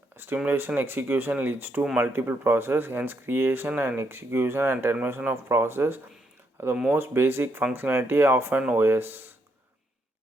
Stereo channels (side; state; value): both; normal; correlation 0.76